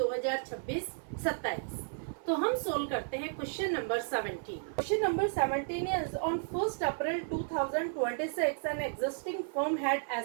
तो हम सोल्व करते हैं question number 17। Question number 17 is on 1st April 2026 an existing firm had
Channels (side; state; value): left; silent; 56 dB below the other